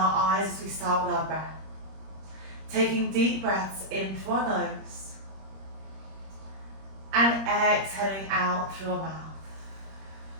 eyes as we start with our breath. Taking deep breaths in through our nose and exhaling out through our mouth.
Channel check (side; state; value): left; late; 26 ms